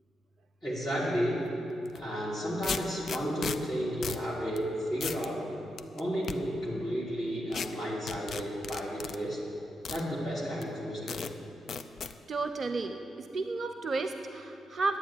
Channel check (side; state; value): both; normal; correlation 0.85